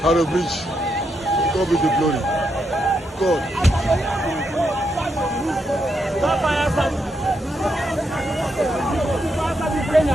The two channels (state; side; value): normal; both; correlation 0.81